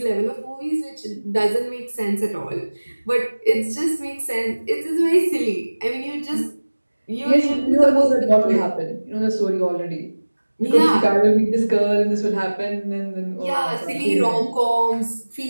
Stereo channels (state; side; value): inverted; both; correlation -1.00